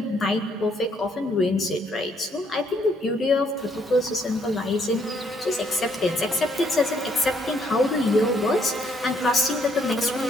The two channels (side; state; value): both; normal; correlation 0.69